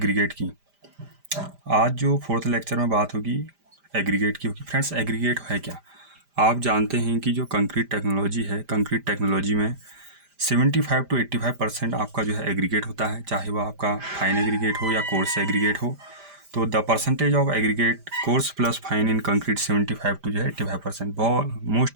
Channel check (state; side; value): late; left; 5.0 ms